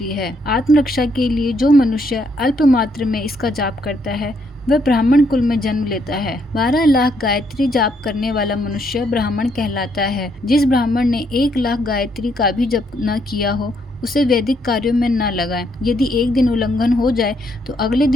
है। आत्मरक्षा के लिए जो मनुष्य अल्प मात्र में इसका जाप करता है वह ब्राह्मण कुल में जन्म लेता है। 12 लाख गायत्री जाप करने वाला मनुष्य ब्राह्मण कहलाता है। जिस ब्राह्मण ने 1 लाख गायत्री का भी जप न किया हो उसे वैदिक कार्यों में न लगाएं। यदि एक दिन उल्लंघन हो जाए तो अगले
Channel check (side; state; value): both; normal; correlation 0.73